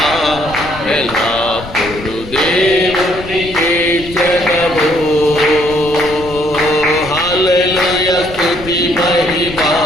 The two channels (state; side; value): noise; left; rumble, 14 dB below the sound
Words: ఎల్లప్పుడు దేవుని కీర్తించెదము. హల్లెలూయా స్తుతి మహిమా